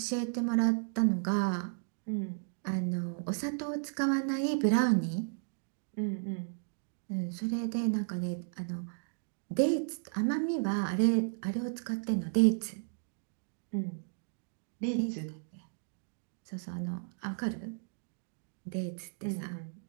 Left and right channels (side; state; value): left; silent; digital silence